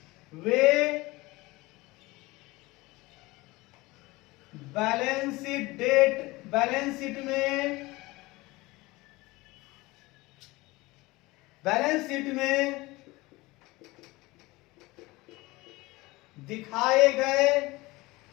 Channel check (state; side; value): quieter; right; 21.4 dB